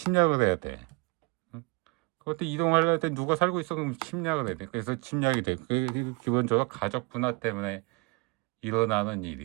해야 돼. 그때 이동하려면 때 누가 살고 있어? 그럼 침략을 해야 돼. 그래서 침략이 돼. 기본적으로 가족 분화 때문에 일어나는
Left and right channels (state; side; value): quieter; left; 29.9 dB